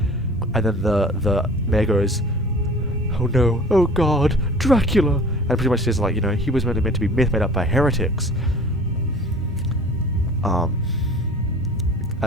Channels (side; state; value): both; normal; correlation 0.45